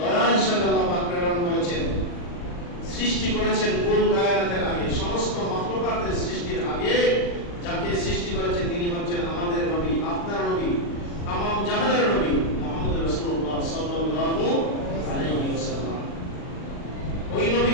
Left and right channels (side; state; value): right; late; 40 ms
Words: হিসাবে আল্লাহ পাক প্রেরণ করেছেন। সৃষ্টি করেছেন কুল কায়নাতের আগে, সমস্ত মাখলুকাতের সৃষ্টির আগে যাকে সৃষ্টি করেছেন তিনি হচ্ছেন আমাদের নবী, আপনার নবী, তামাম জাহানের নবী মুহাম্মদ রাসূলুল্লাহ সাল্লাল্লাহু আলাইহি ওয়াসাল্লাম। ওই